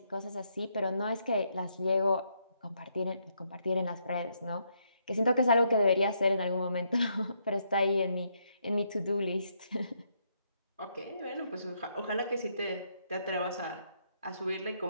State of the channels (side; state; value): both; inverted; correlation -0.75